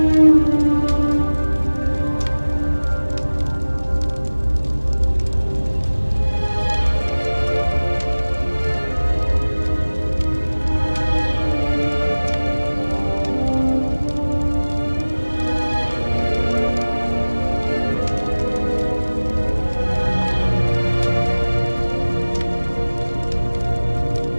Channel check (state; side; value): inverted; both; correlation -1.00